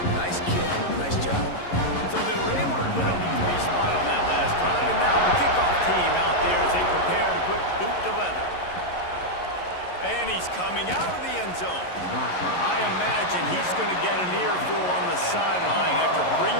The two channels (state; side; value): late; right; 11 ms